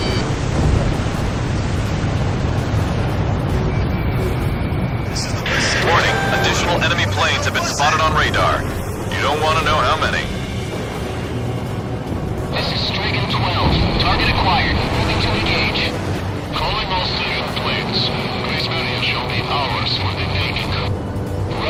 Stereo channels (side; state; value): both; identical; correlation 1.00